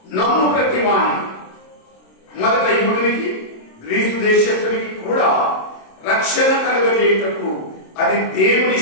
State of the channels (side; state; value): right; late; 27 ms